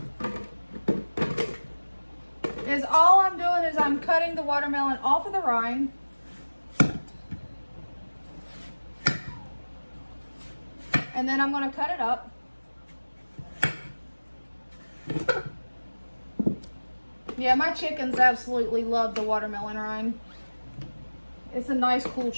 All I'm doing is I'm cutting the watermelon off of the rind. And then I'm going to cut it up. Yeah, my chickens absolutely love the watermelon rind. It's a nice cool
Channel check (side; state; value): both; inverted; correlation -1.00